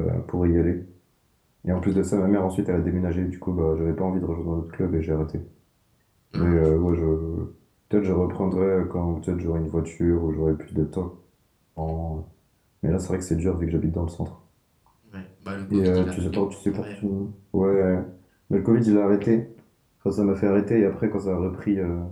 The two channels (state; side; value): identical; both; correlation 1.00